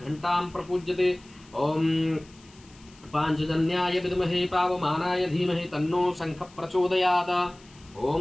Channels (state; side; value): noise; left; hiss, 26 dB below the sound